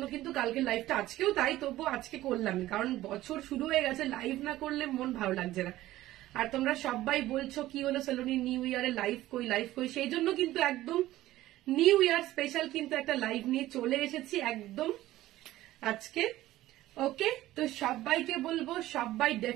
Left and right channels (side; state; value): left; quieter; 15.5 dB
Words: কিন্তু কালকে লাইভটা আজকেও তাই, তবুও আজকে করলাম, কারণ বছর শুরু হয়ে গেছে, লাইভ না করলে মন ভালো লাগছে না। আর তোমরা সবাই বলছো কি হলো সালোনি নিউ ইয়ারে লাইভ কই, সেই জন্য কিন্তু একদম নিউ ইয়ার স্পেশাল কিন্তু একটা লাইভ নিয়ে চলে এসেছি একদম আজকে। ওকে, তো সবাইকে বলবো সবাই